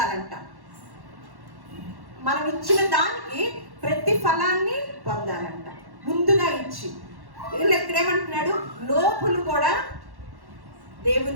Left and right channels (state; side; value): late; left; 1.1 ms